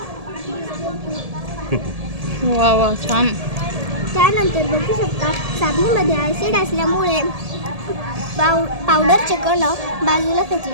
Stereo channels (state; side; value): late; left; 1.7 ms